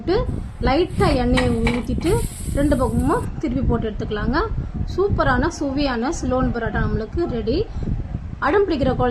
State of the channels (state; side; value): identical; both; correlation 1.00